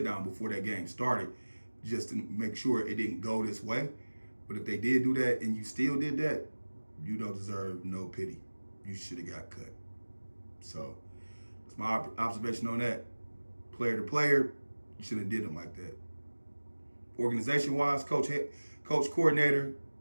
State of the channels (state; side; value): inverted; both; correlation -1.00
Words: down before that game started, just to make sure it didn't go this way. But if they did do that and you still did that, you don't deserve no pity. You should have got cut. So that's my observation on that. Player to player, you shouldn't have did them like that. Organization-wise, coach, coordinator,